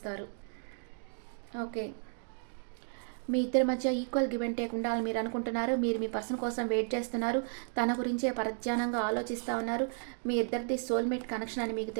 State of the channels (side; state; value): left; silent; 56 dB below the other